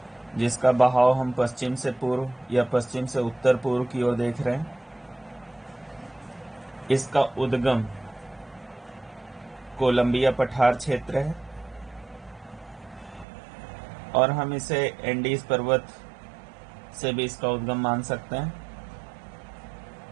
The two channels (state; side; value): drops out; left; at 13.2 s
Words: जिसका बहाव हम पश्चिम से पूर्व या पश्चिम से उत्तर पूर्व की ओर देख रहे हैं। इसका उद्गम कोलंबिया पठार क्षेत्र है और हम इसे एंडीज पर्वत से भी इसका उद्गम मान सकते हैं।